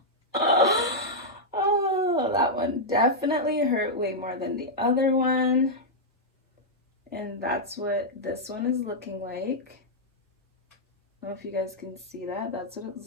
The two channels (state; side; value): normal; both; correlation -0.06